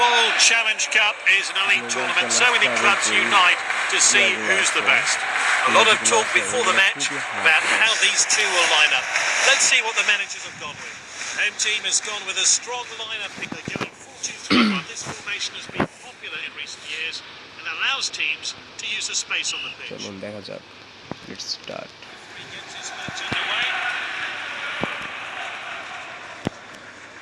Challenge Cup is an elite tournament. So many clubs unite to see who's the best. A lot of talk before the match about how these two will line up. Let's see what the managers have gone with. Home team has gone with a strong lineup. They're going 4-2-3-1. This formation has been popular in recent years and allows teams to use the space on the pitch. চলুন দেখা যাক। Let's start. He gets his match underway.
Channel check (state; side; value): identical; both; correlation 1.00